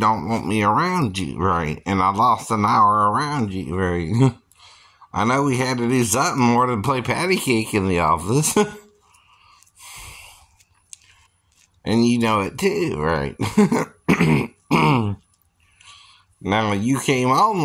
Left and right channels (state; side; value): identical; both; correlation 1.00